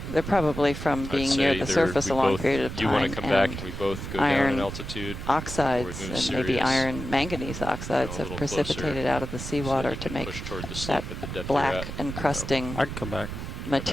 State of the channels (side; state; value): right; noise; rumble, 7 dB below the sound